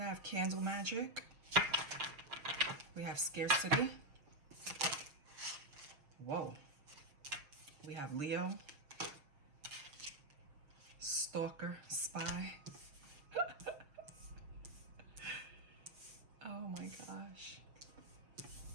have candle magic. We have scarcity. Whoa. We have Leo. Stalker, spy. Oh my gosh.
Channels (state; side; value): late; left; 6.6 ms